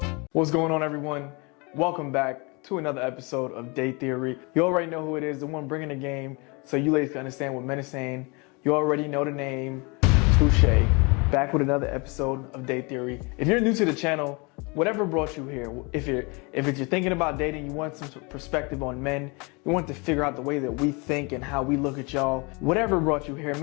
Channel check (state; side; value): quieter; right; 29.4 dB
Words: What's going on, everyone? Welcome back to another episode of Date Theory. You already know who it is, the one bringing the game, so you ladies can understand what men are saying. You already know the name, Touche. Back with another episode of Date Theory. If you're new to the channel, whatever brought you here, if you're thinking about dating, you want some perspective on men, you want to figure out the way that we think and how we look at y'all, whatever brought you here,